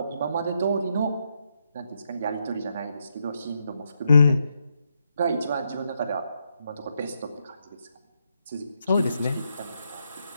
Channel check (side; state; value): both; inverted; correlation -0.80